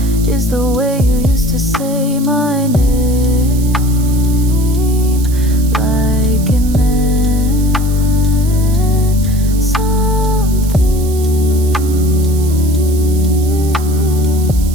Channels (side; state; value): right; noise; hiss, 15 dB below the sound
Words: is the way you used to say my name.